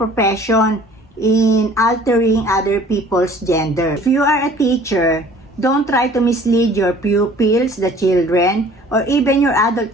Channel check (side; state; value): both; normal; correlation 0.51